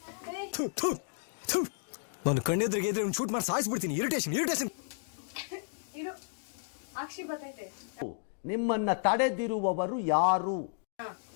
ನಾನು ಕಣ್ಣೆದ್ರಿಗೆ ಇದ್ರೆ ಶೂಟ್ ಮಾಡಿ ಸಾಯಿಸ್ಬಿಡ್ತೀನಿ. ಇರಿಟೇಷನ್ ಇರು, ಅಕ್ಷಿ ಬರ್ತೈತೆ. ನಿಮ್ಮನ್ನ ತಡೆದಿರುವವರು ಯಾರು?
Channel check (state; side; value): silent; right; digital silence